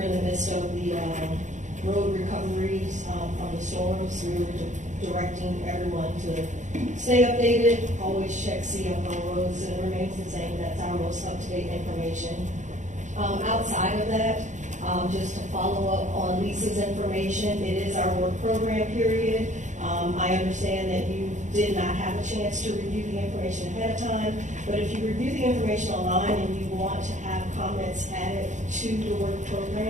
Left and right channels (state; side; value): late; left; 0.35 ms